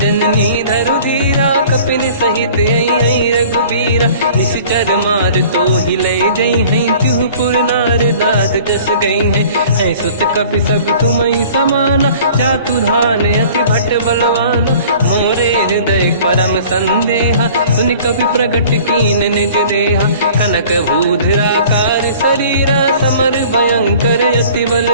धरु धीरा, कपिन सहित आई रघुबीरा। निश्चर मार तो ही ले जई हैं, तिहुपुर नार दात जस गई हैं। सुत कपि सब तुमहि समाना, जातु धान अति भट बलवान। मोरे हृदय परम संदेहा, सुनि कपि प्रगट कीन निज देहा। कनक भूधराकार शरीरा, समर भयंकर अति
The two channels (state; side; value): inverted; both; correlation -0.48